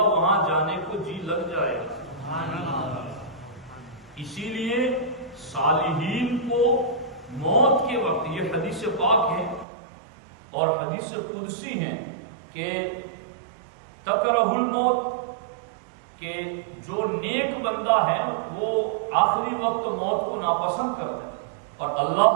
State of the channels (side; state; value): left; drops out; at 9.7 s